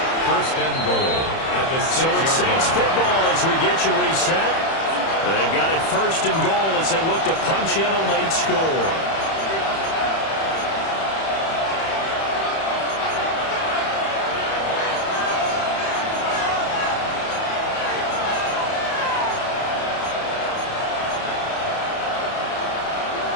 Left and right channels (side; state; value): right; late; 31 ms